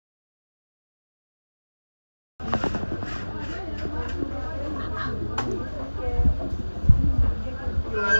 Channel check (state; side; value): inverted; both; correlation -1.00